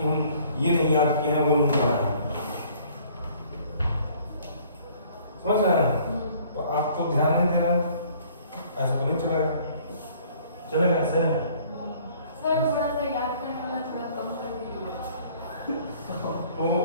हम ये नहीं याद किए हैं, वो नहीं पढ़ा है, समझ रहे हैं। तो आप तो ध्यान नहीं दे रहे हैं, ऐसा तो नहीं चलेगा, चलेगा ऐसे। सर थोड़ा सा याद करने वाला थोड़ा कम कर दीजिए। तो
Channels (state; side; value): inverted; both; correlation -0.57